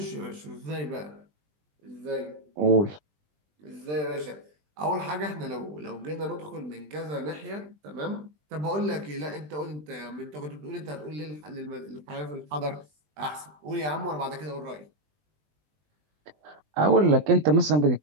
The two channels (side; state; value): left; late; 20 ms